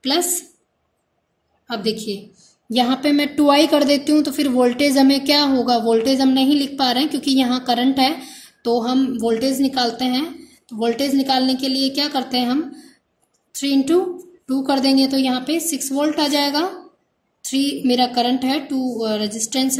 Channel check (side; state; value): both; identical; correlation 1.00